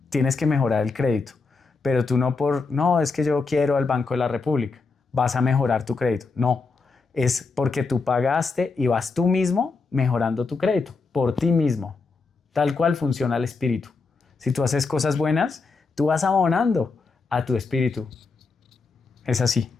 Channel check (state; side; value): quieter; right; 4.3 dB